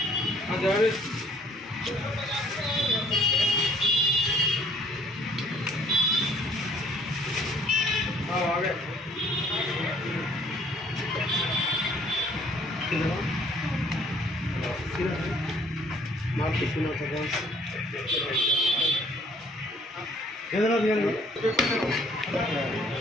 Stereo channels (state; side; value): normal; both; correlation 0.60